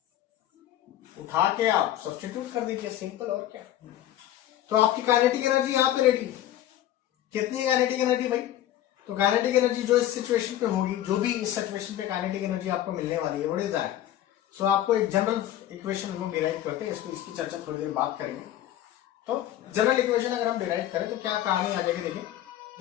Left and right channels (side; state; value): right; quieter; 12.7 dB